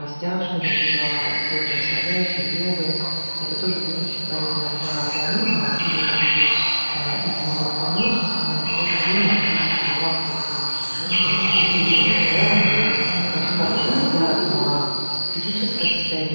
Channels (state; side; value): inverted; both; correlation -1.00